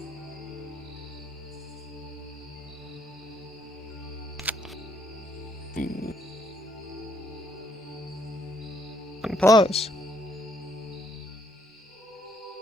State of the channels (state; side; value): normal; both; correlation 0.70